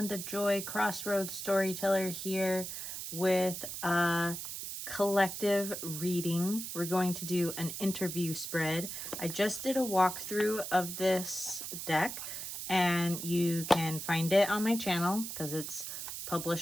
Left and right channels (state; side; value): noise; right; hiss, 6 dB below the sound